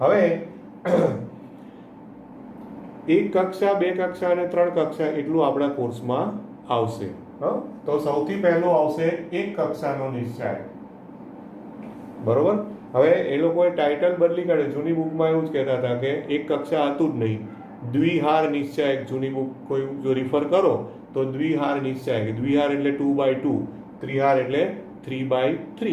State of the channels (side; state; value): both; identical; correlation 1.00